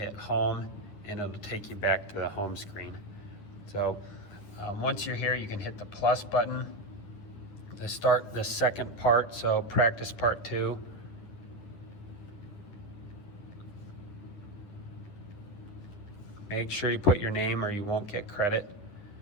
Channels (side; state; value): right; late; 10 ms